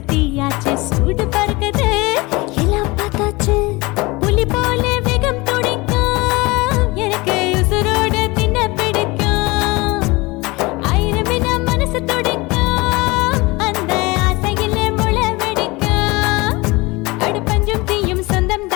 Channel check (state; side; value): quieter; right; 23.6 dB